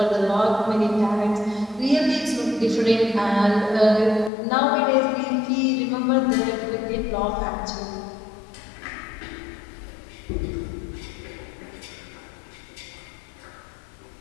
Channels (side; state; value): right; drops out; at 4.3 s